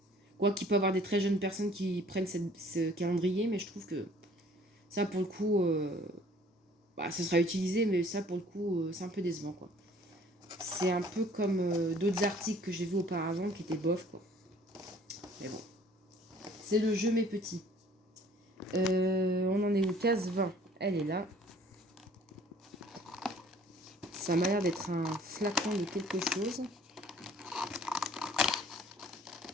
quoi qu'il peut y avoir des très jeunes personnes qui prennent ce calendrier, mais je trouve que ça pour le coup, ça sera utilisé, mais ça pour le coup, c'est un peu décevant quoi. C'est un peu comme d'autres articles que j'ai vus auparavant qui étaient bof quoi. Mais bon, c'est le jeu mes petits. On en est où? Case 20, elle est là. Ça m'a l'air d'être un flacon de quelque chose.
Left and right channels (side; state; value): both; normal; correlation 0.55